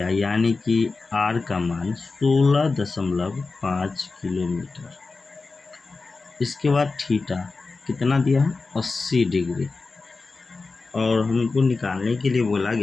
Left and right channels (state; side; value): quieter; right; 4.0 dB